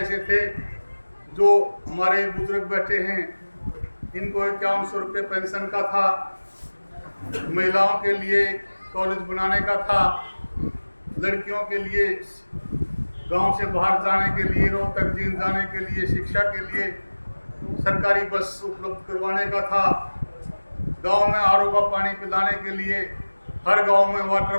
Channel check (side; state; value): both; inverted; correlation -1.00